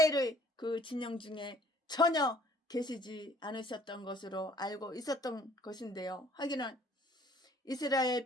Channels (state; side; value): normal; both; correlation 0.56